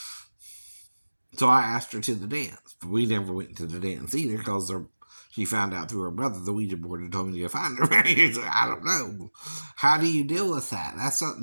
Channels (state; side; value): inverted; both; correlation -1.00